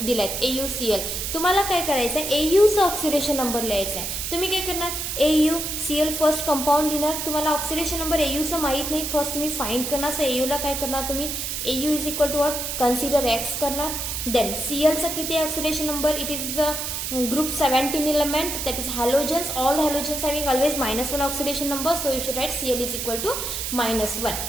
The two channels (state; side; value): noise; right; hiss, 3 dB below the sound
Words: दिलायत AuCl, तुम्हाला काय करायचं आहे, Auचा ऑक्सिडेशन नंबर लिहायचा आहे. तुम्ही काय करणार, AuCl फर्स्ट कंपाऊंड लिहिणार. तुम्हाला ऑक्सिडेशन नंबर Auचा माहित नाही, फर्स्ट तुम्ही फाइंड करणार. सो Auला काय करणार तुम्ही, AU is equal to what, consider X करणार. Then Cl चा किती oxidation number, it is the group 17 element, that is halogens. All the halogens having always -1 oxidation number, so you should write Cl is equal to -1.